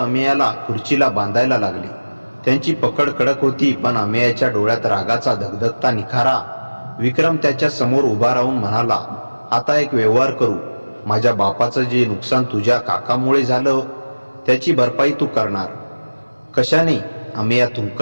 खुर्चीला बांधायला लागली. त्यांची पकड कडक होती, पण अमेयाच्या डोळ्यात रागाचा धगधगता निखारा. विक्रम त्याच्या समोर उभा राहून म्हणाला, आता एक व्यवहार करू. माझ्या बापाचं जे नुकसान तुझ्या काकामुळे झालं त्याची भरपाई तू करणार. कशाने? अमेया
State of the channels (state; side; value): inverted; both; correlation -1.00